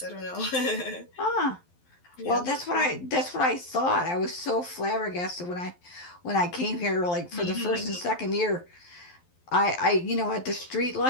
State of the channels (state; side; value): late; right; 11 ms